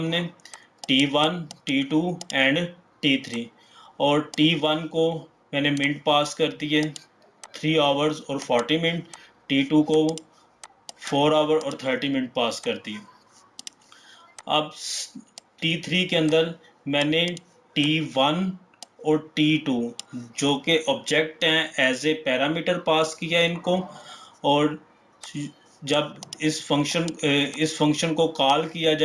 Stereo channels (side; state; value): both; identical; correlation 1.00